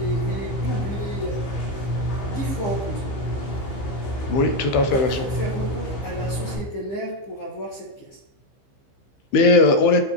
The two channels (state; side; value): late; right; 15 ms